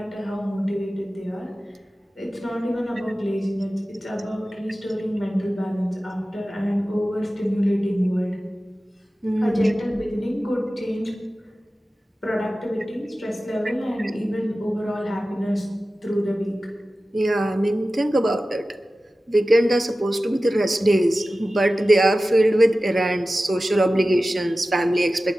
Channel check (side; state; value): both; normal; correlation 0.95